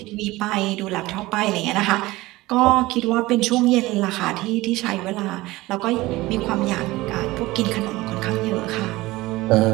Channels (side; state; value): left; quieter; 19.3 dB